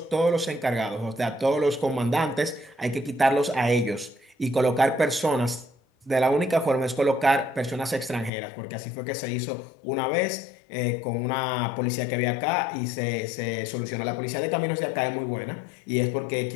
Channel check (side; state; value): right; drops out; at 8.3 s